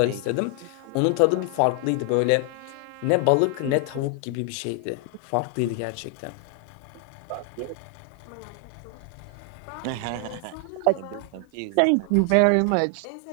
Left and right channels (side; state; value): both; different; correlation 0.00